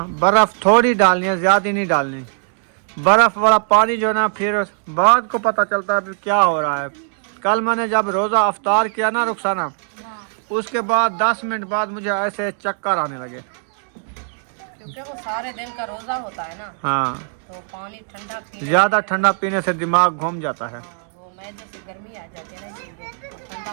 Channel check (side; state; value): left; silent; 66 dB below the other